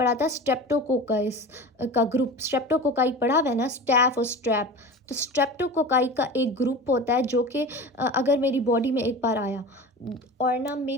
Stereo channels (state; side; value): normal; both; correlation 0.33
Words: था स्ट्रेप्टोकोकाइस का ग्रुप, स्ट्रेप्टोकोकाई पढ़ा हुआ है ना, स्टैफ और स्ट्रैप, तो स्ट्रेप्टोकोकाई का एक ग्रुप होता है जो कि अगर मेरी बॉडी में एक बार आया और ना